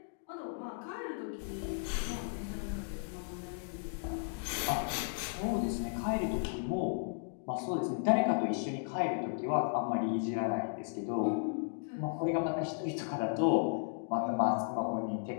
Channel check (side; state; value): right; silent; digital silence